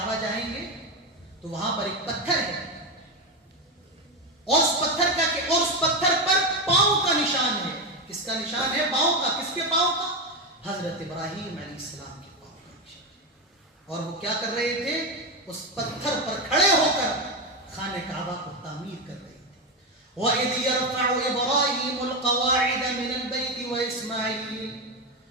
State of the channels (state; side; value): normal; both; correlation 0.13